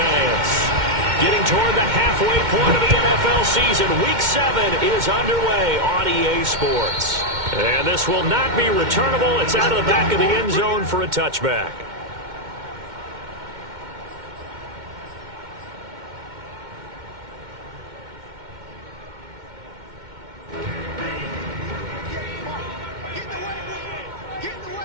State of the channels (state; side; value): late; left; 2.1 ms